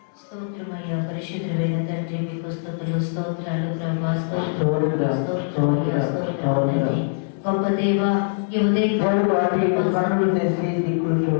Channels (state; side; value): silent; right; digital silence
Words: స్తోత్రమయ్యా పరిశుద్ధమైన తండ్రి, మీకు స్తుతులు స్తోత్రాలు ప్రభా, స్తోత్రమయ్యా స్తోత్రాలు గొప్ప దేవ. ఈ ఉదయం